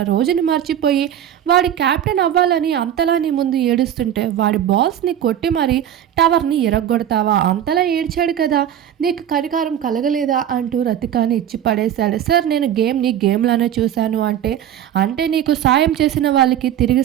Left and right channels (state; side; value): quieter; left; 10.4 dB